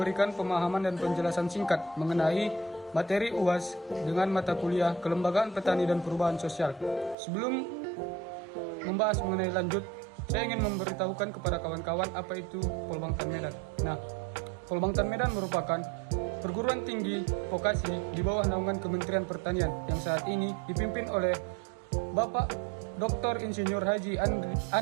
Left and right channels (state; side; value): drops out; left; at 7.2 s